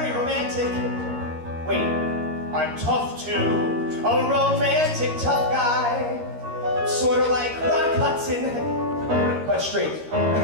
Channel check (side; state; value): left; late; 13 ms